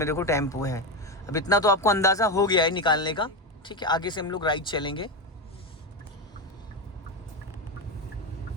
देखो टेम्पो है। अब इतना तो आपको अंदाजा हो गया है निकालने का। ठीक है, आगे से हम लोग राइट चलेंगे।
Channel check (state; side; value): normal; both; correlation 0.13